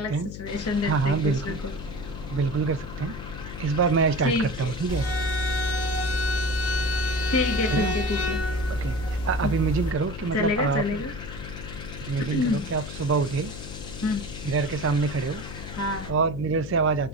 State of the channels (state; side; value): noise; left; hum, 10 dB below the sound